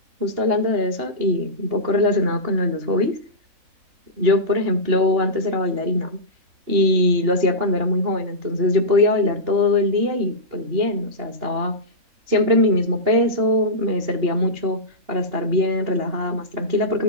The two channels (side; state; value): left; late; 2.9 ms